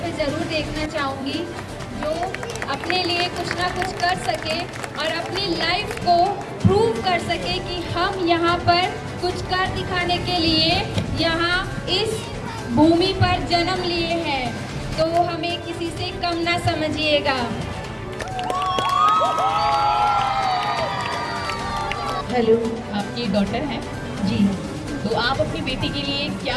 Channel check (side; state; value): both; identical; correlation 1.00